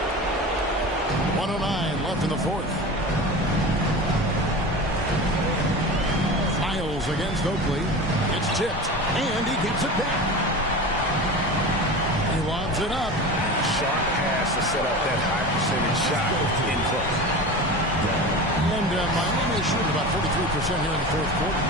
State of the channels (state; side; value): normal; both; correlation 0.31